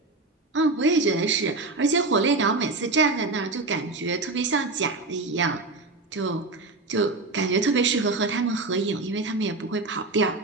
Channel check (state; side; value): quieter; left; 3.3 dB